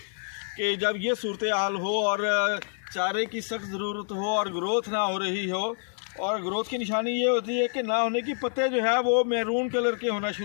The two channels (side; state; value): right; silent; digital silence